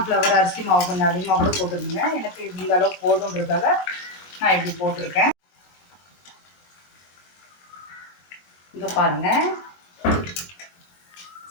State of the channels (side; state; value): right; late; 22 ms